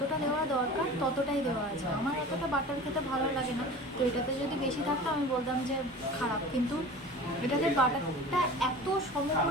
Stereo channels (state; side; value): normal; both; correlation 0.38